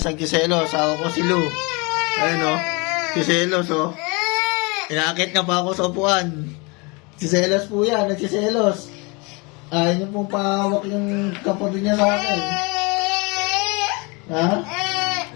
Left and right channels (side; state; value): right; quieter; 28.7 dB